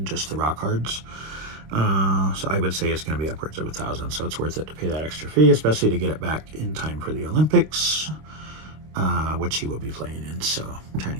just the rock hards. So I would say it's going to be upwards of 1,000. So it's worth it to pay that extra fee, especially to get it back in time for the Olympics, which he will be playing in. So I'm trying to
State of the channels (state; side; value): late; left; 26 ms